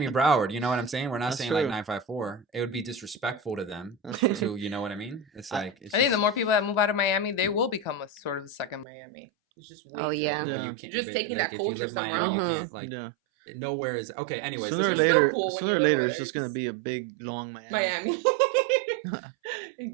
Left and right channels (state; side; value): drops out; left; at 8.8 s